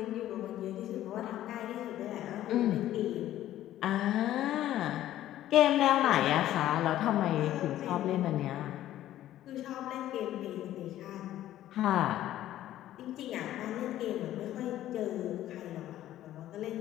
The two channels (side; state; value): right; quieter; 13.2 dB